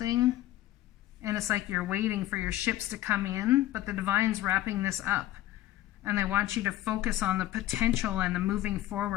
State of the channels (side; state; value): right; quieter; 14.6 dB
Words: and it's like you're waiting for your ships to come in, but the divine's wrapping this up. And they want you to focus on the potential and the moving